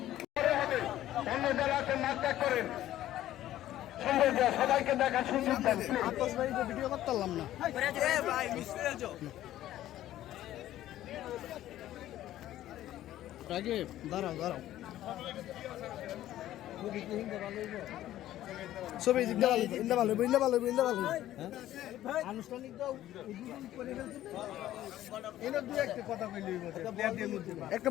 অন্য যারা আছেন নাক ত্যাগ করেন, সবাইকে দেখা সুযোগ দেন। ভিডিও করতে পারলাম না। আগে দাঁড়াও দাঁড়াও, ছবি ইন্দা ভালো ইন্দা ভালো ইন্দা ভালো আনুষ্ঠানিক দাও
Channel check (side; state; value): right; quieter; 13.5 dB